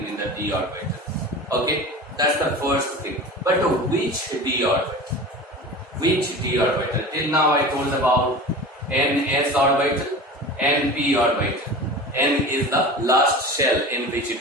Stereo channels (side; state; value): both; normal; correlation 0.34